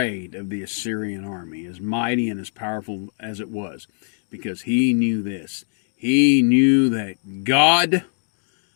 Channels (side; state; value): right; silent; 57 dB below the other